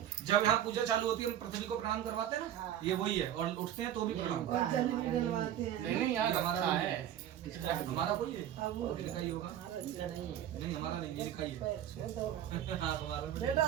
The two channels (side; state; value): left; quieter; 11.0 dB